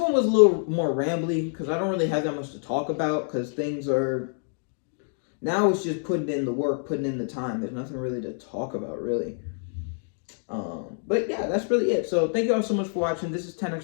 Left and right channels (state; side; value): silent; right; 56 dB below the other